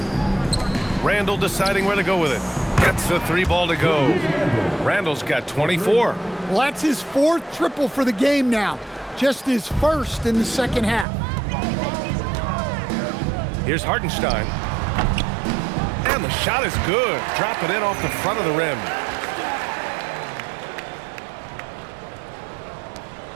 Randle deciding where to go with it. Gets the 3 ball to go. Randle's got 24. Well, that's his 4th triple for the game now. Just his 1st in the second half. Here's Hartenstein. And the shot is good. Dropping in off the front of the rim.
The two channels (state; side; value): drops out; left; at 11.1 s